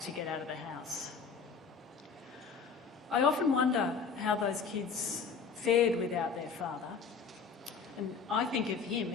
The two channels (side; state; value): right; quieter; 5.6 dB